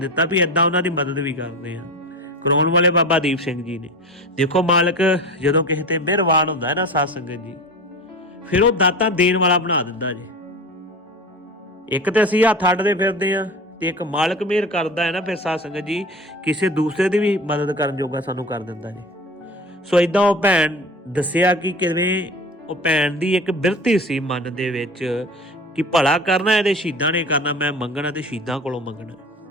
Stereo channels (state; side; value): normal; both; correlation 0.33